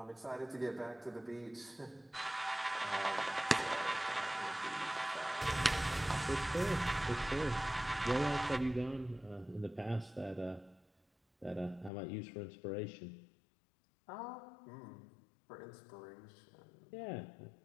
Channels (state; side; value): drops out; right; at 11.9 s